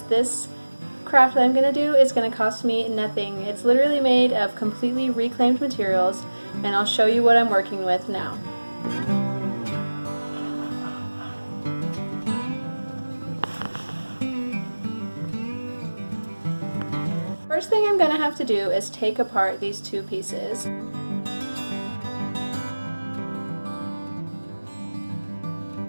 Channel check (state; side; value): inverted; both; correlation -1.00